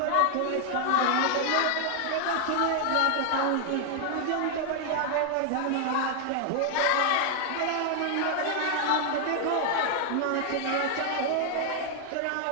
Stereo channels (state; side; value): different; both; correlation 0.00